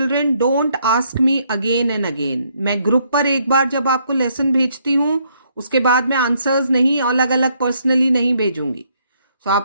don't ask me again and again. मैं ग्रुप पर एक बार जब आपको लेसन भेजती हूँ, उसके बाद मैं आंसर्स नहीं अलग अलग पर्सनली नहीं भेजूंगी. सो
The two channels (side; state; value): both; inverted; correlation -0.71